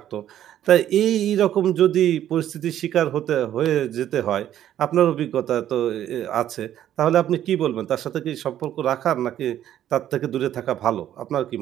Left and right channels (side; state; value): left; quieter; 11.4 dB